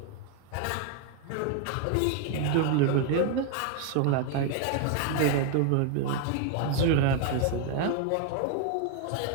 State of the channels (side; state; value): both; different; correlation 0.00